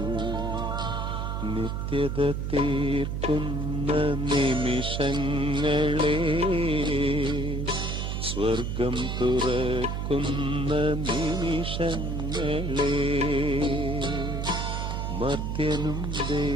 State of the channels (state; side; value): noise; right; hum, 2 dB below the sound